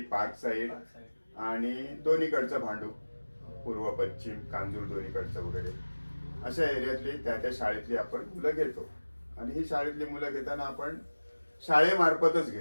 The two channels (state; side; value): inverted; both; correlation -1.00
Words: पार्क साईड आणि दोन्हीकडचं भांडूप, पूर्व पश्चिम, कांजूर दोन्हीकडचं वगैरे अशा एरियातली त्या शाळेतली आपण मुलं घेतो. आणि ही शाळेतली मुलं घेताना आपण शाळेमार्फतच